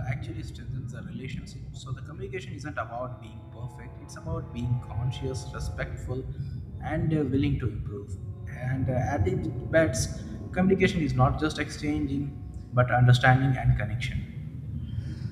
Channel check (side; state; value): both; identical; correlation 1.00